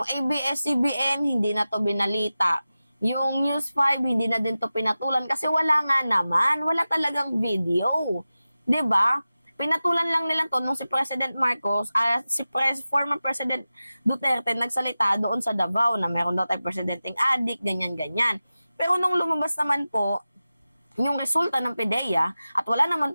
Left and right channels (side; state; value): both; inverted; correlation -0.95